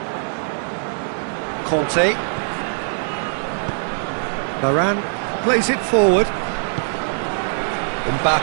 Conte. Varane plays it forward.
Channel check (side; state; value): left; silent; digital silence